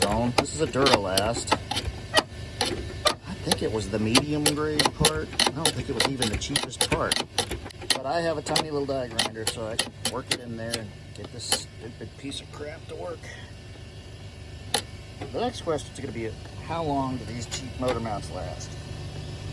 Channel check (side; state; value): both; identical; correlation 1.00